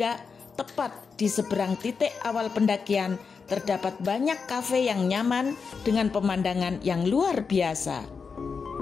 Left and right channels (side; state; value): right; quieter; 5.4 dB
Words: tepat di seberang titik awal pendakian terdapat banyak kafe yang nyaman dengan pemandangan yang luar biasa.